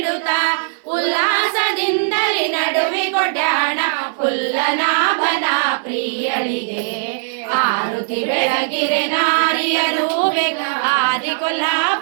ಉಲ್ಲಾಸದಿಂದಲಿ ನಡುವೆ ಕೊಡ್ಯಾಣ ಪುಲ್ಲನಾಭನ ಪ್ರಿಯಳಿಗೆ ಆರುತಿ ಬೆಳಗಿರೆ ನಾರಿಯರು ಬೇಗ ಆದಿ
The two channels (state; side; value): silent; left; digital silence